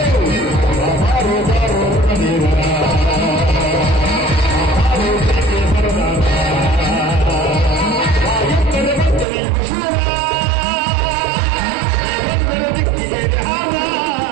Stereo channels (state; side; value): drops out; left; at 9.2 s